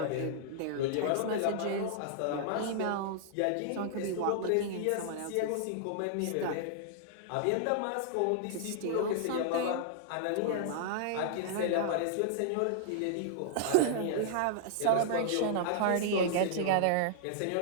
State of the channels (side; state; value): both; different; correlation -0.01